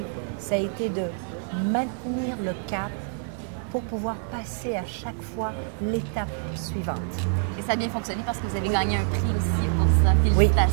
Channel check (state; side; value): silent; left; digital silence